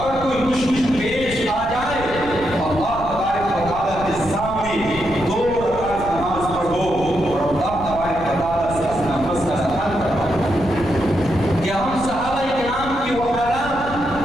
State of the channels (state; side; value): noise; left; rumble, 12 dB below the sound